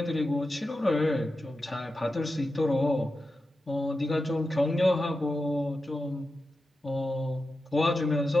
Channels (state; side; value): normal; both; correlation 0.91